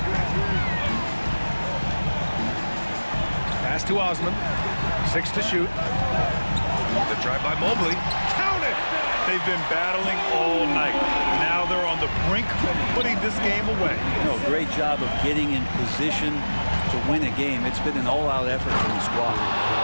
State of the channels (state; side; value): inverted; both; correlation -1.00